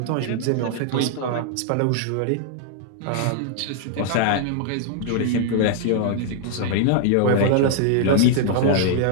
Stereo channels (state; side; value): different; both; correlation 0.00